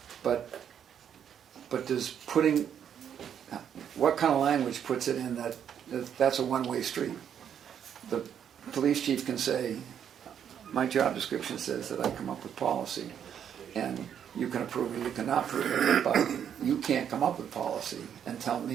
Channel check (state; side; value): quieter; left; 8.7 dB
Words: But does putting, what kind of language puts it in that's a one-way street? The police chief can say, my job description says that I come up with policy, and you can approve it, you cannot approve it, but you can't come up with policy and tell